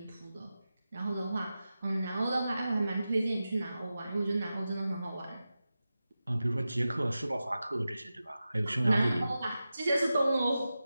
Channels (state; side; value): inverted; both; correlation -0.93